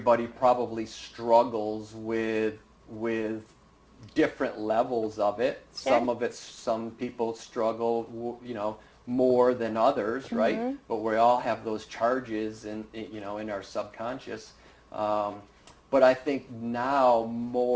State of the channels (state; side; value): identical; both; correlation 1.00